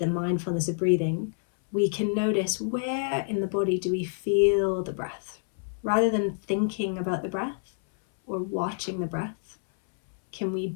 mindfulness of breathing, we can notice where in the body do we feel the breath. Rather than thinking about the breath or watching the breath, can we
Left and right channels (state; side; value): silent; right; 60 dB below the other